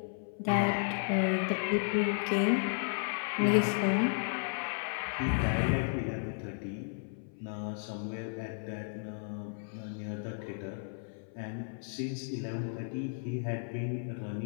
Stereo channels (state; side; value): silent; right; 55 dB below the other